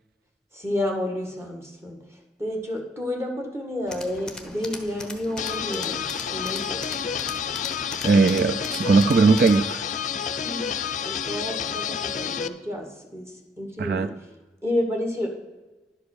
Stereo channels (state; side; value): normal; both; correlation 0.65